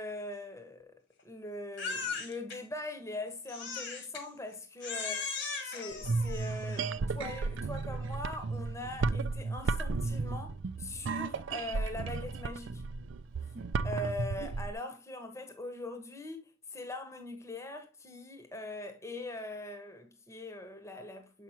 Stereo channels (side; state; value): both; normal; correlation 0.57